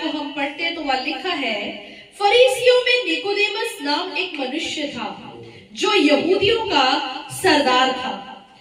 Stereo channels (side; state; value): both; identical; correlation 1.00